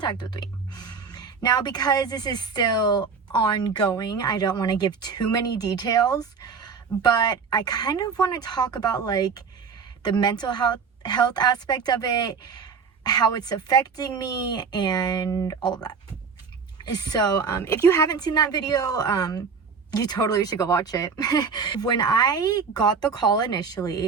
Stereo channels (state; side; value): quieter; left; 5.6 dB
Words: with me. Now, because this is still ongoing, I don't want to give too many details, but I kind of want to talk about like the mental health aspect of it, how it's affecting me, and all of that. So if you haven't seen that video, you totally should go watch it. When I got the call